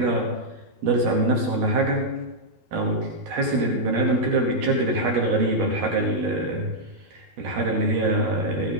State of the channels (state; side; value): late; left; 12 ms